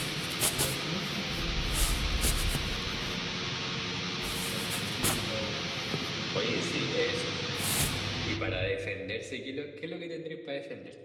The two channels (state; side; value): identical; both; correlation 1.00